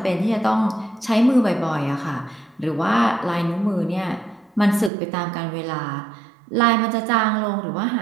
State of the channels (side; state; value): left; drops out; at 4.9 s